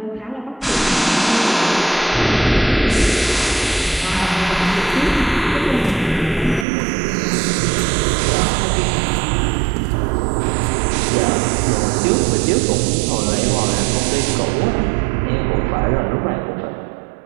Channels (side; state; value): left; drops out; at 6.7 s